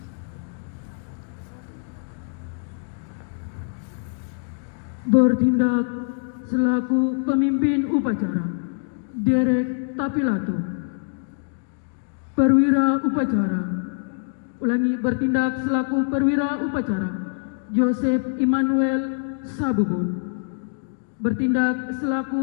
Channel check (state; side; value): silent; right; digital silence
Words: Bertindak selaku pemimpin upacara Derek Tapilato. Perwira upacara. Ulangi, bertindak selaku perwira upacara Joseph Immanuel Sabubun. Bertindak